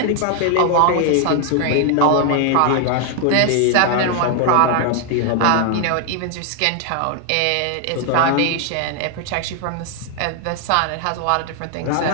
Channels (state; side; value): different; both; correlation 0.00